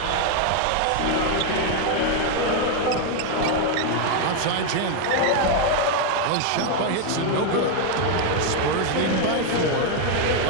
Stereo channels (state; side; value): different; both; correlation 0.01